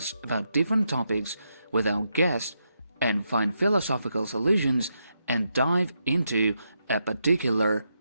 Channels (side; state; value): both; inverted; correlation -0.83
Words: about different topics with our guests and find philosophical solutions and dive into a particular